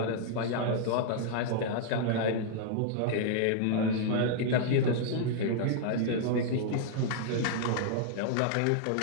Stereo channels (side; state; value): both; different; correlation -0.01